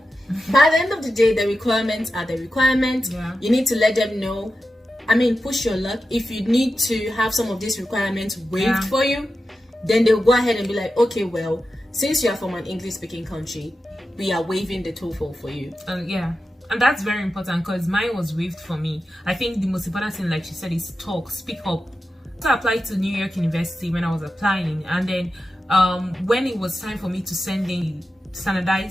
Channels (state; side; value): normal; both; correlation 0.91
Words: By the end of the day, the requirements are the requirements. Yeah. You need to let them know. I mean, push your luck. If you need to have some of these requirements waived for you, then they'll go ahead and be like, okay, well, since you are from an English-speaking country, we are waiving the TOEFL for you. Yeah. And that's very important because mine was waived for me. I think the most important thing, like she said, is talk, speak up. So I applied to New York University when I was applying, and then when it was time for me to send in